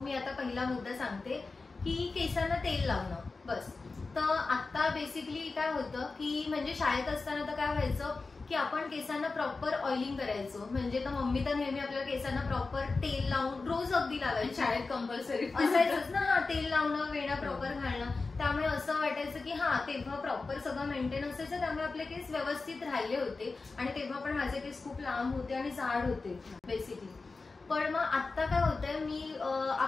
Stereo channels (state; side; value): quieter; right; 3.9 dB